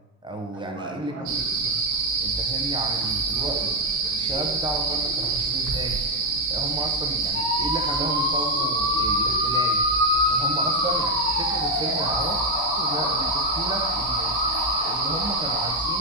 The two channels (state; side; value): normal; both; correlation 0.05